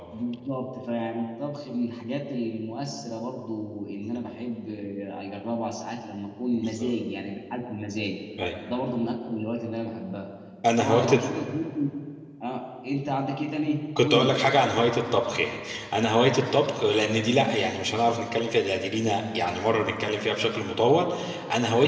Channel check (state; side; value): identical; both; correlation 1.00